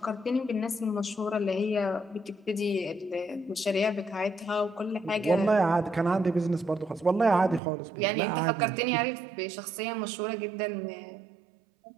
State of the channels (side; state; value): left; drops out; at 7.6 s